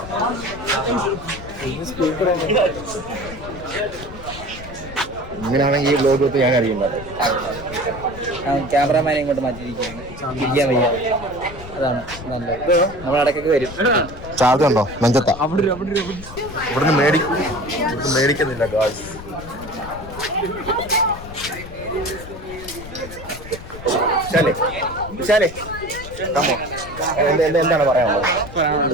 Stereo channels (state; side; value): noise; left; rumble, 14 dB below the sound